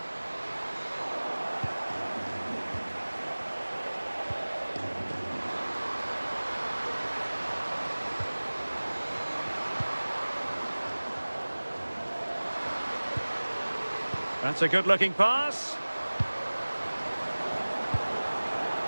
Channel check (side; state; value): both; inverted; correlation -1.00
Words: That's a good-looking pass.